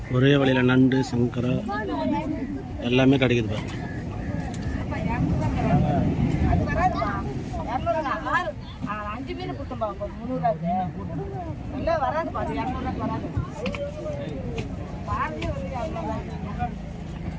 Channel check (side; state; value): both; identical; correlation 1.00